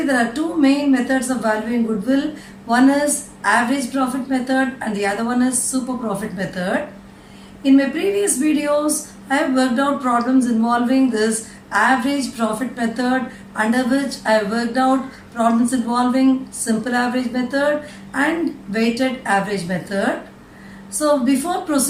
there are two main methods of valuing goodwill. One is average profit method and the other one is super profit method. In my previous videos, I have worked out problems involving this average profit method, under which I have worked out problems involving simple average method and weighted average method. So before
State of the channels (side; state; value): both; identical; correlation 1.00